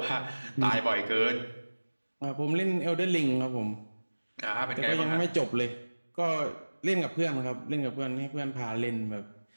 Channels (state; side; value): inverted; both; correlation -1.00